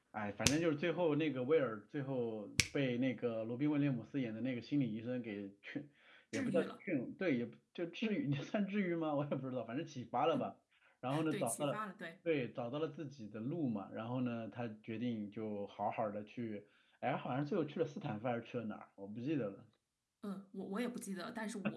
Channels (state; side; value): identical; both; correlation 1.00